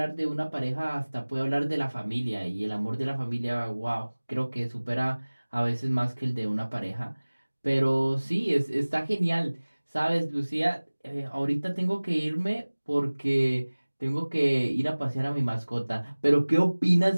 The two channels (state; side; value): inverted; both; correlation -1.00